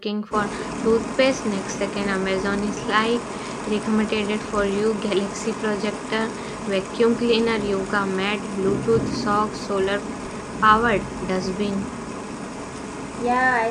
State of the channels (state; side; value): identical; both; correlation 1.00